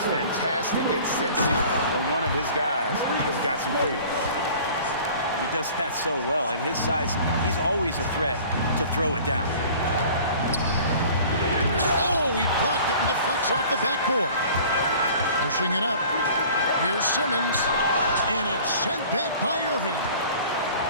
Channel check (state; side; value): inverted; both; correlation -0.47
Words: fantastic at sensing when one of his guys has got some freedom. He does that so well. At his size, he's always a threat to throw it down. Oh, he blocked it and deflects off the backboard. Pushing it up. Here's Simmons. And it's sent back by Irving.